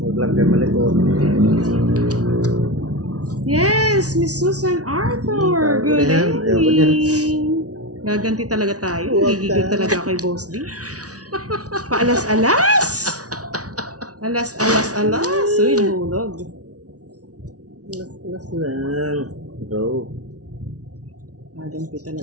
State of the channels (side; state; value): left; late; 0.68 ms